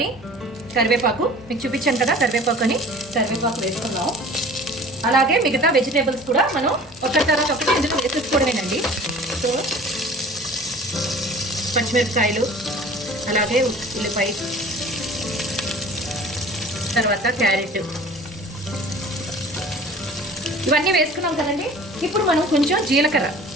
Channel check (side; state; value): both; normal; correlation 0.45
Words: కరివేపాకు మీకు చూపించాను కదా, కరివేపాకు వేసుకుందాం. అలాగే మిగతా వెజిటేబుల్స్ కూడా మనం ఒకటి తర్వాత ఒకటి ఇందులో వేసేసుకోవడమేనండి. సో పచ్చిమిరపకాయలు, అలాగే ఉల్లిపాయ, తర్వాత క్యారెట్, ఇవన్నీ వేసుకున్నాం కదండి. ఇప్పుడు మనం కొంచెం జీలకర్ర